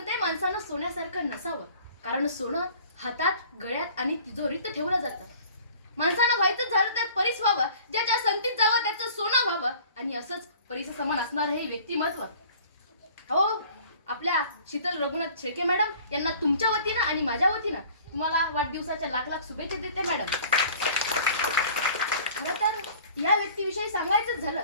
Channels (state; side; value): inverted; both; correlation -0.48